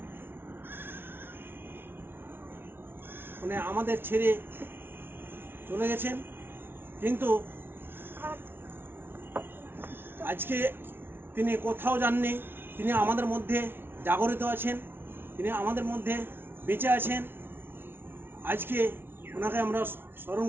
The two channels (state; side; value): late; left; 0.11 ms